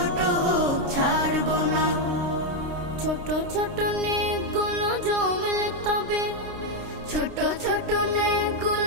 হোক ছাড়ব না। ছোট ছোট নেকগুলো জমলে তবে, ছোট ছোট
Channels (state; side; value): late; left; 29 ms